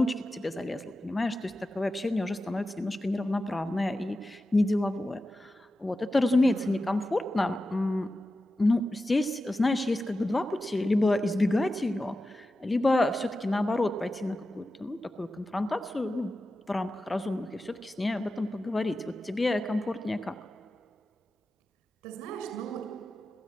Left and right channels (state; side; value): normal; both; correlation 0.93